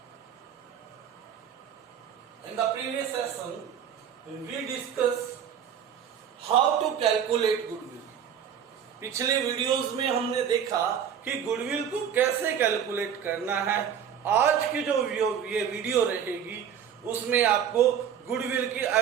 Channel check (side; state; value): left; quieter; 8.4 dB